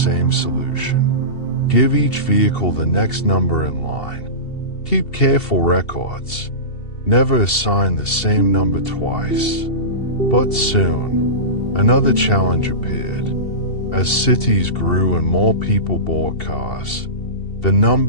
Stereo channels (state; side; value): late; right; 2.7 ms